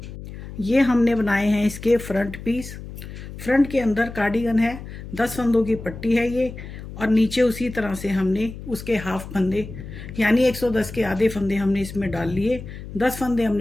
ये हमने बनाए हैं इसके फ्रंट पीस। फ्रंट के अंदर कार्डिगन है, 10 फंदों की पट्टी है ये, और नीचे उसी तरह से हमने उसके हाफ फंदे यानी 110 के आधे फंदे हमने इसमें डाल लिए। 10 फंदे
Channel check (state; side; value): noise; left; hum, 12 dB below the sound